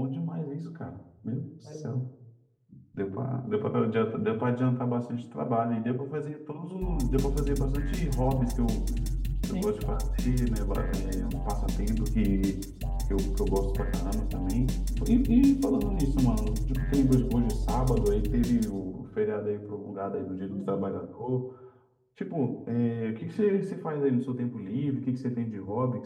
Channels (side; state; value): both; identical; correlation 1.00